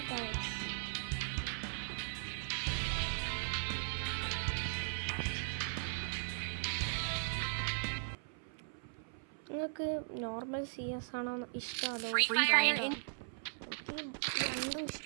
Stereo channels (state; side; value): silent; left; 52 dB below the other